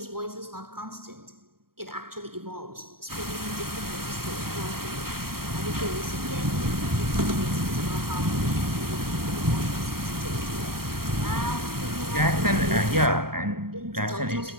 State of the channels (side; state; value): left; late; 0.93 ms